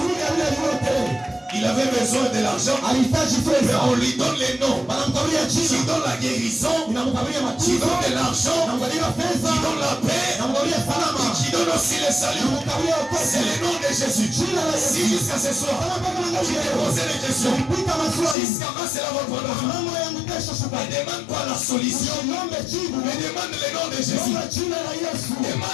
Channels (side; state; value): right; drops out; at 18.4 s